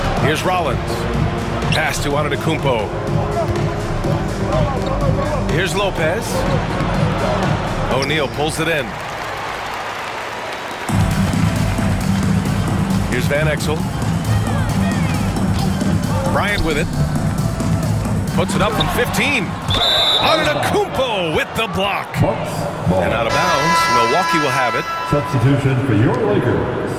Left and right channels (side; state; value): both; identical; correlation 1.00